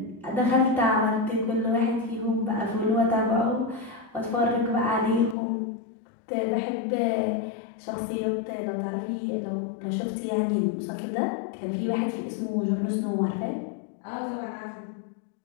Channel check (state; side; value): drops out; right; at 5.4 s